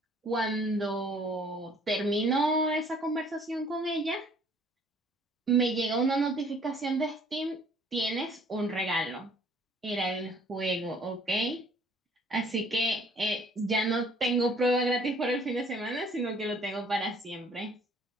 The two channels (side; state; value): both; normal; correlation 0.58